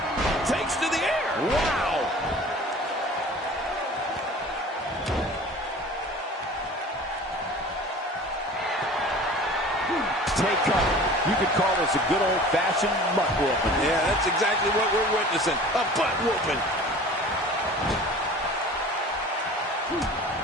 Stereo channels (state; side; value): normal; both; correlation 0.42